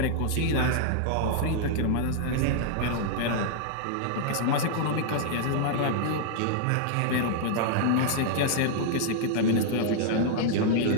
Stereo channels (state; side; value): different; both; correlation -0.01